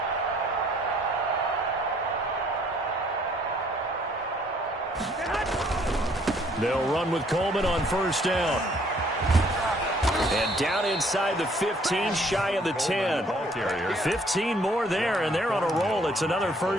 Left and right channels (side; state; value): both; normal; correlation 0.62